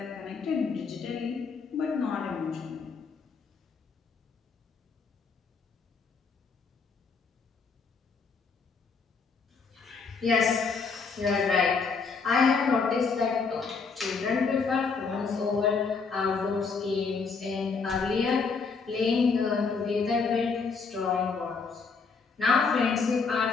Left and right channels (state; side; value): quieter; right; 5.0 dB